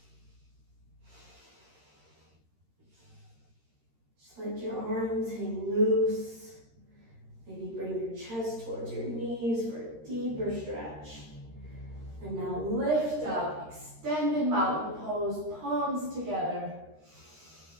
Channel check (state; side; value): late; left; 13 ms